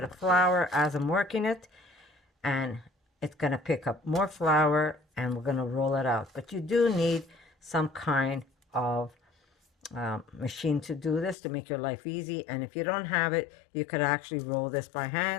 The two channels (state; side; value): drops out; right; at 11.4 s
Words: of flour as I'm working it, and it's going to pick up more flour, and we're going to roll it out. But you do need some kind of machine to do this to make your life easy, and if you don't have it, you could actually roll this by